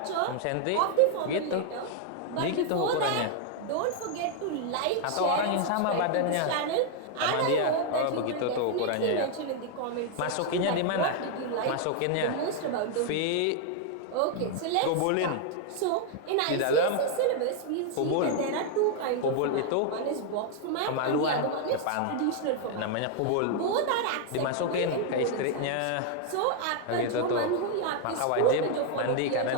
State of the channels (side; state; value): both; different; correlation 0.00